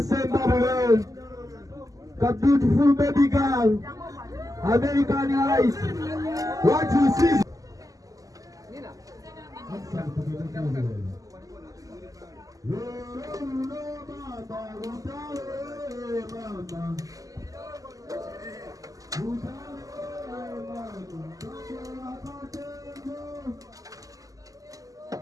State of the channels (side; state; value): left; late; 0.17 ms